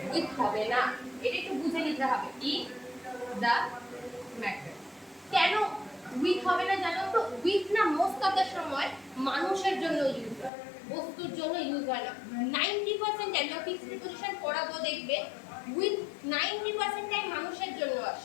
উইথ হবে না, এটা একটু বুঝে নিতে হবে। In the matter. কেন উইথ হবে না জানো তো? উইথ না মোস্ট অফ দ্য সময় মানুষের জন্য ইউজ হয়, বস্তুর জন্য ইউজ হয় না। 90% টাইম যখন ফিক্সড প্রিপোজিশন পড়াবো দেখবে উইথ 90% টাইম মানুষের জন্য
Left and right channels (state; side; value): drops out; right; at 10.5 s